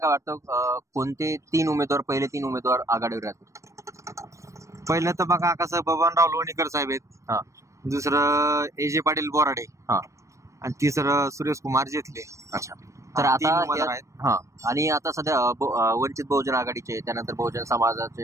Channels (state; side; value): late; left; 0.15 ms